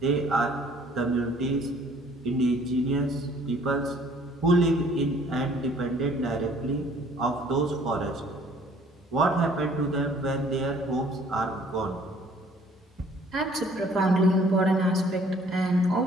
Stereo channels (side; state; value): both; normal; correlation 0.57